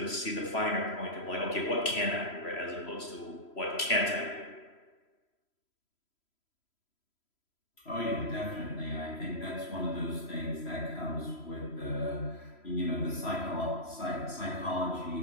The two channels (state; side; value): late; right; 3.0 ms